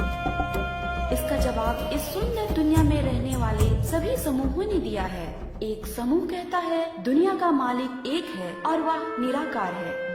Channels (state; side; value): identical; both; correlation 1.00